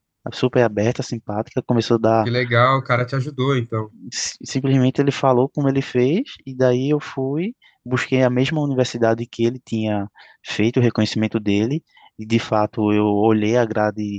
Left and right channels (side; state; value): both; identical; correlation 1.00